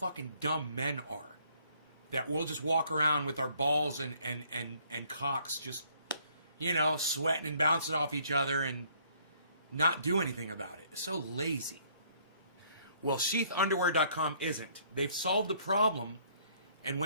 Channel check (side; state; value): both; inverted; correlation -0.63